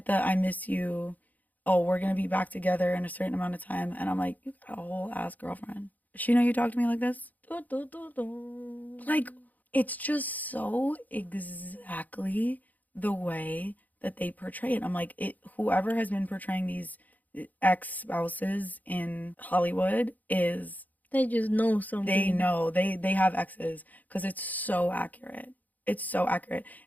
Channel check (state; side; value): late; right; 0.080 ms